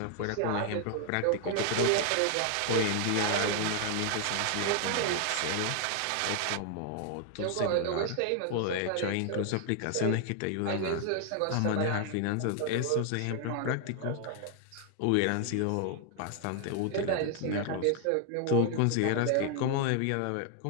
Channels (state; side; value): different; both; correlation 0.00